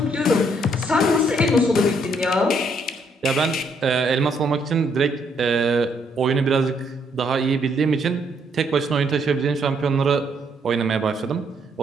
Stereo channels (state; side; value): normal; both; correlation 0.71